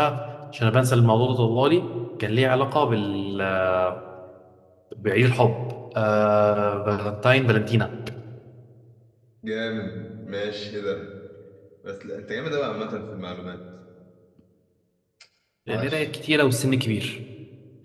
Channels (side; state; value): both; identical; correlation 1.00